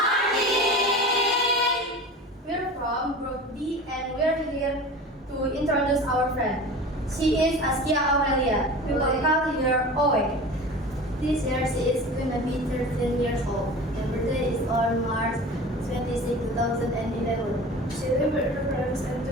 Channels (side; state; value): both; normal; correlation 0.36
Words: We're from Group D and we're here to introduce our friend. She is Askia Aurelia. We will call her Owe. This year she is going to be 13 years old. Her birthday is on March 26, 2011. She lives with her parents and 2